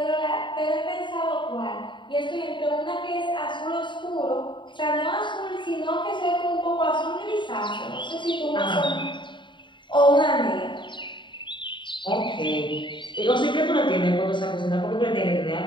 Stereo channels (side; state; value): right; late; 0.23 ms